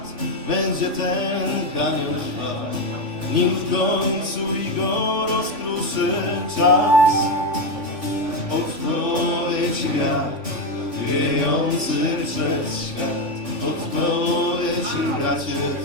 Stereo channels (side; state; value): left; late; 3.5 ms